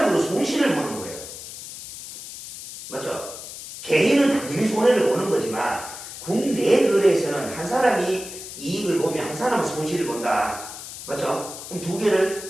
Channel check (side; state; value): left; noise; hiss, 12 dB below the sound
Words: 손실을 보는 거예요. 맞죠? 개인은 당연히 손해를 보는 거지만 국내 거래에서는 한 사람이 이익을 보면 한 사람은 손실을 본다. 맞죠? 그럼 두